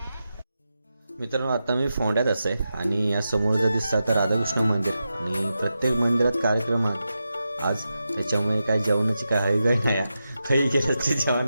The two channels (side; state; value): both; inverted; correlation -0.90